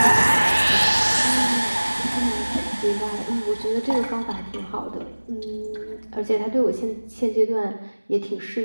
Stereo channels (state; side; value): inverted; both; correlation -1.00